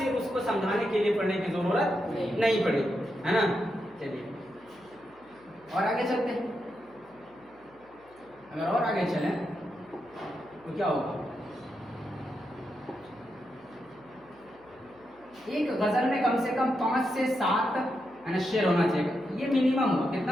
उसको समझाने के लिए पढ़ने की जरूरत नहीं पड़ेगी, है ना। चलिए और आगे चलते हैं। अगर और आगे चलें तो क्या होगा, एक गजल में कम से कम 5 से 7 है ना शेर होना चाहिए, ये मिनिमम होगा।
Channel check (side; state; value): left; noise; hum, 29 dB below the sound